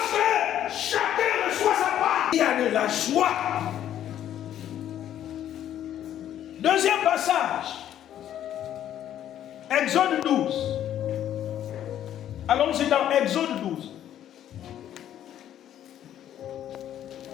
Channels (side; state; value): right; quieter; 11.0 dB